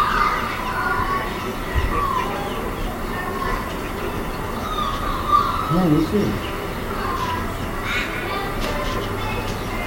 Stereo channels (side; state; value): both; identical; correlation 1.00